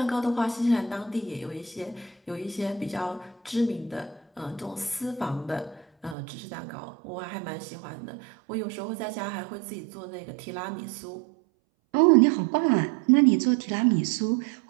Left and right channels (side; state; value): left; drops out; at 6.2 s